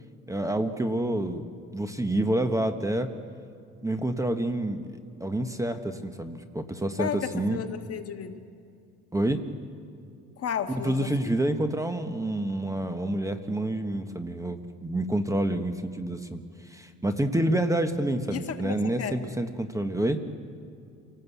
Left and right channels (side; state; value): both; normal; correlation 0.76